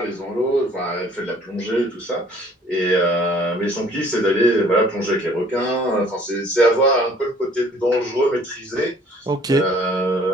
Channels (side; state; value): both; normal; correlation 0.56